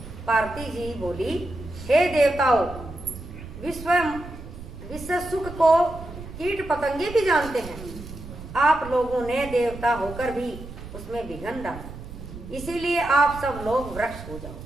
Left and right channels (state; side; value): noise; right; rumble, 13 dB below the sound